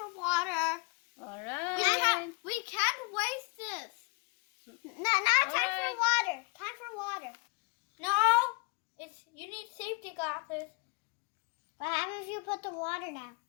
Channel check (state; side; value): quieter; right; 32.0 dB